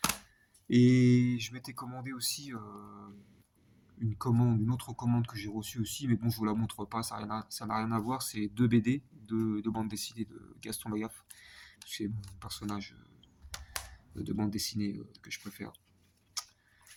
Et je m'étais commandé aussi une autre commande que j'ai reçue aussi, mais bon, je vous la montre pas, ça n'a rien à voir. C'est 2 BD, de bande dessinée de Gaston Lagaffe. C'est mon personnage de bande dessinée que je préfère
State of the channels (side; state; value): both; identical; correlation 1.00